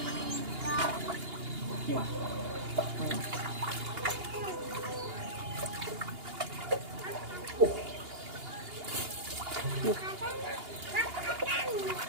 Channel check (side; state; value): left; late; 2.8 ms